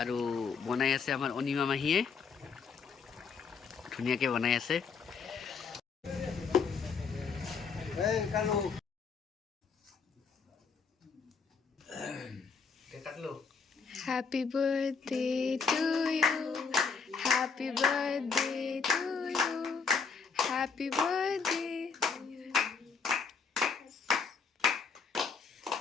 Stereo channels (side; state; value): right; quieter; 5.5 dB